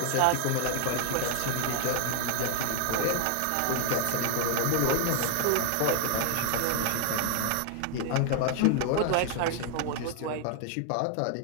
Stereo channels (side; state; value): both; different; correlation 0.00